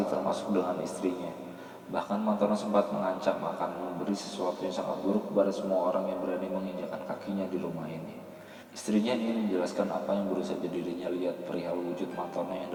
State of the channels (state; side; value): identical; both; correlation 1.00